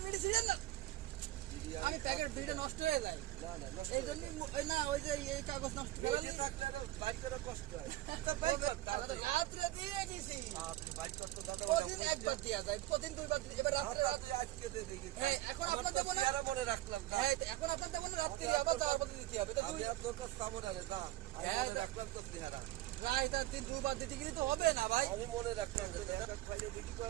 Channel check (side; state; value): left; quieter; 16.0 dB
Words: ছিলেন না আমি প্যাকেট বিড়ি নষ্ট হয়ে যায় না না নষ্ট এই জন্য না ওই যে এই কাগজ নষ্ট এই যে থাকলে আরো বাইক করে কষ্ট হয়। তা বাইক কর তাড়াতাড়ি। রাত্রে দিয়ে দিছি আপনি বাইক করতে দাদা প্রতিদিন একবার দেওয়া যায় প্রতিদিন দুইবার এবার রাত্রে রাতে আজকে দিয়ে দিই। হ্যাঁ এখন আপনার দেবো না ইয়ারা মনে রাখলাম না। হ্যাঁ এখন আপনার দেবো না রাত্রে আবার যাওয়ার পথে দিতে হবে আমি আর তোর কাছে যাবো না রে, যা। আমি হ্যাঁ, মনে রাখলাম তোর চেহারা। রায় তার দিন দুবার দিতে গেলে তো হবে না ভাই আমি মনে রাখলাম যে একটা খাইলে দেখি